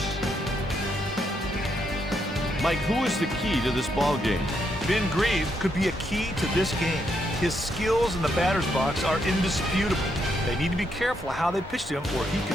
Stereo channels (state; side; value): normal; both; correlation 0.77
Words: Mike, who is the key to this ball game? Ben Grieve could be a key to this game. His skills in the batter's box are indisputable. They need to be careful how they pitch to him, or he